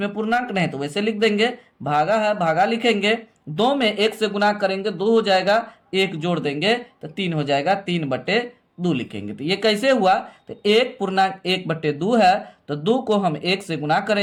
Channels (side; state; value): both; identical; correlation 1.00